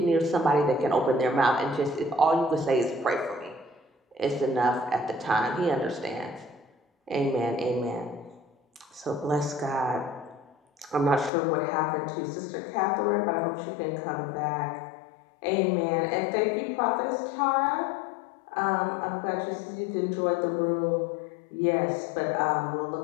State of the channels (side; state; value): right; drops out; at 11.3 s